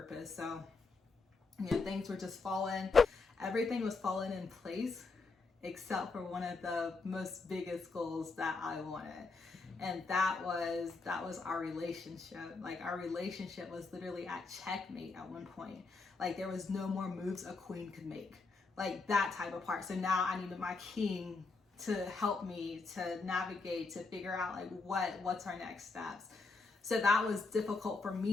So, you know, things were just falling. Everything was falling in place except for one of the most biggest goals that I wanted. And that was our relationship. Like our relationship was literally at checkmate at one point. Like there was no more moves a queen could make. Like that type of part. So now I needed my king to help me to navigate, to figure out like what's our next steps. So that was difficult for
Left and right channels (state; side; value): quieter; right; 4.0 dB